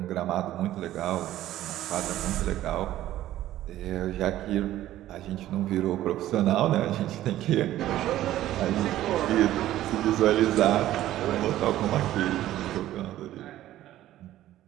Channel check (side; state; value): left; quieter; 13.8 dB